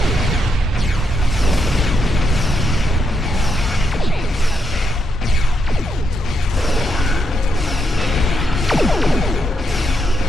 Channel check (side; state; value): both; normal; correlation 0.80